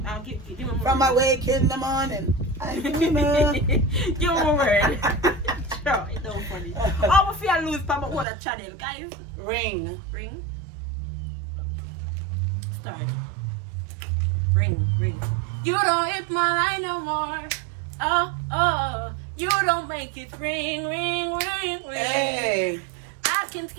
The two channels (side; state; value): left; drops out; at 8.2 s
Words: me more. From my wake in the morning. I'm the winner. Give me a word. Sure, it's so funny. Oh, if I lose from my channel, guys. Ring. Start. Ring. You don't hit my line no more. Oh. You don't make it ring. Hey. I can